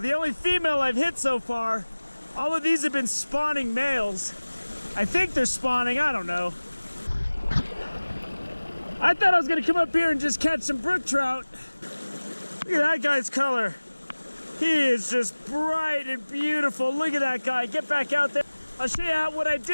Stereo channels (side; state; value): both; inverted; correlation -1.00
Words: only female I've hit so far. All of these have been spawning males. I think they're spawning, I don't know. I thought I was gonna come up here and just catch some brook trout. Look at that guy's color. He is just bright and beautiful. Look at that guy, get back out there. I'll show you what I